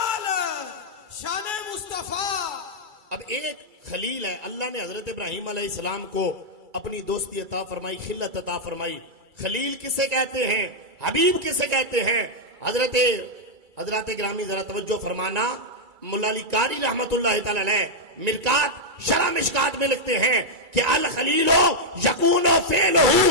شان مصطفیٰ۔ اب ایک خلیل ہے، اللہ نے حضرت ابراہیم علیہ السلام کو اپنی دوستی عطا فرمائی، خلت عطا فرمائی۔ خلیل کسے کہتے ہیں، حبیب کسے کہتے ہیں؟ حضرات گرامی ذرا توجہ فرمانا، مولا علی قاری رحمت اللہ تعالی علیہ مرکات شرح مشکات میں لکھتے ہیں کہ الخلیل یکون فعلہ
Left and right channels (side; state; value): left; late; 2.3 ms